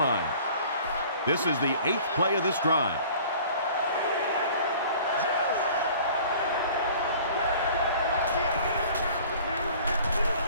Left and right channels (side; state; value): both; inverted; correlation -0.48